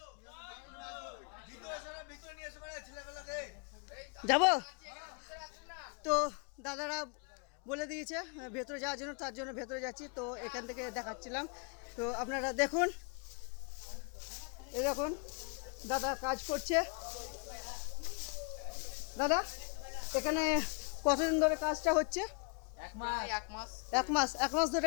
যাব তো দাদারা বলে দিয়েছে ভেতরে যাওয়ার জন্য, তার জন্য ভেতরে যাচ্ছি। তো এখান থেকে দেখাচ্ছিলাম, তো আপনারা দেখুন। এই দেখুন দাদা কাজ করছে। দাদা এখানে কতদিন ধরে কাজটা হচ্ছে? এক মাস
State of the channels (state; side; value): quieter; right; 35.9 dB